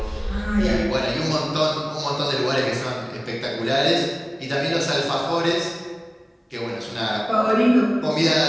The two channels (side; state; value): both; identical; correlation 1.00